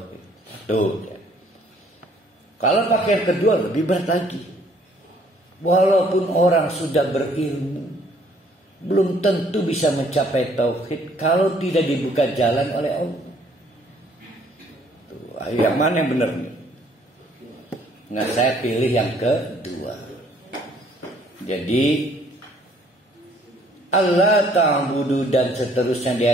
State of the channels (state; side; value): normal; both; correlation 0.61